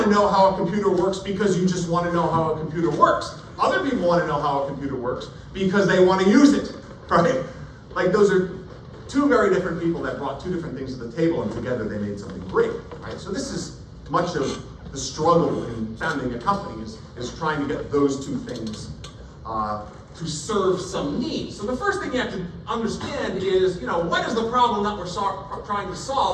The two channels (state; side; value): identical; both; correlation 1.00